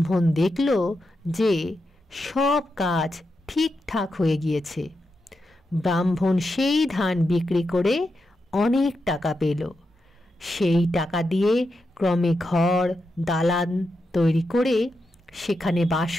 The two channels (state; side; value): normal; both; correlation 0.87